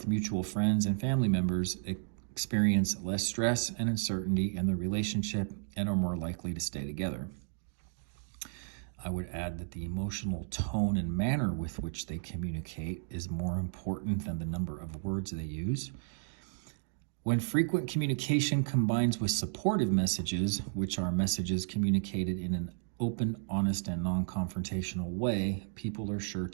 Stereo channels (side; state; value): left; silent; digital silence